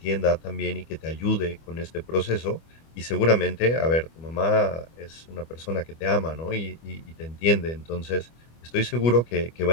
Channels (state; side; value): late; right; 25 ms